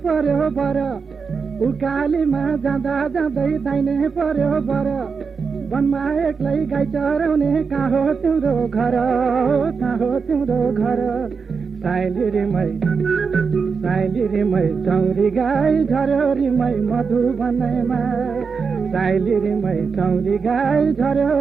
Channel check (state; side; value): quieter; left; 5.4 dB